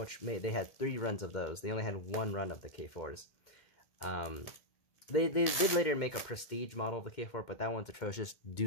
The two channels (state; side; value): late; right; 2.1 ms